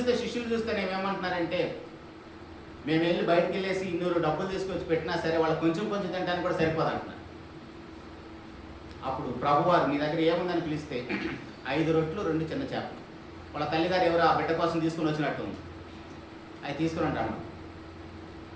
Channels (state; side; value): identical; both; correlation 1.00